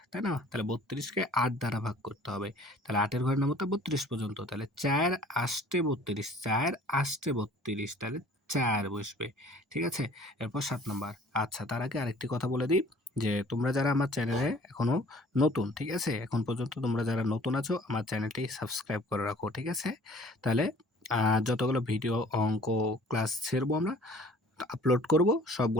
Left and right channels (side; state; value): both; normal; correlation 0.51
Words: তাই না? তাহলে ৩২ কে ৮ দ্বারা ভাগ করতে হবে। তাহলে ৮ এর ঘরের নামতা ৩২ পর্যন্ত। তাহলে ৪ আষ্টে ৩২, ৪ আষ্টে ৩২, তাহলে ৪ বসবে, ঠিক আছে? এরপর ৭ নাম্বার। আচ্ছা, তার আগে আরেকটি কথা বলে দিই যে তোমরা যারা আমার চ্যানেলে এখনো নতুন, ঠিক আছে? এখন পর্যন্ত তোমরা যারা নতুন আছো আমার চ্যানেলটি সাবস্ক্রাইব করে রাখো, ঠিক আছে? তাহলে যতগুলো ভিডিও, অঙ্ক, ক্লাস ছেড়বো আমরা, আপলোড করব,